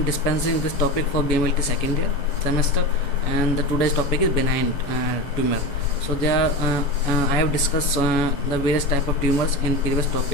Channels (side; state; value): right; late; 7.1 ms